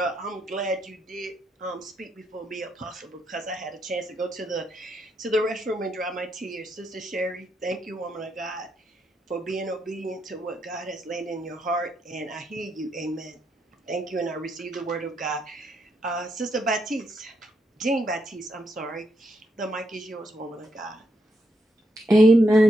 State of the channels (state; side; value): normal; both; correlation 0.79